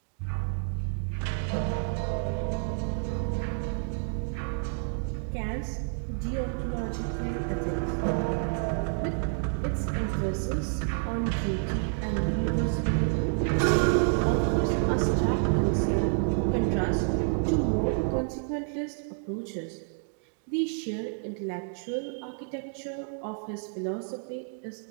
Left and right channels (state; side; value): silent; left; 58 dB below the other